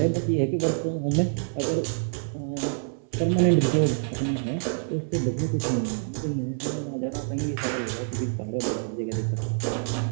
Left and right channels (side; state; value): left; silent; 58 dB below the other